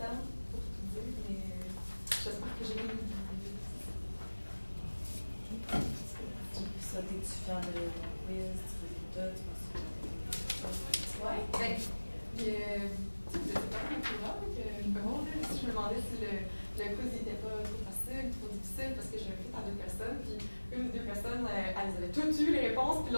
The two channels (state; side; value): inverted; both; correlation -1.00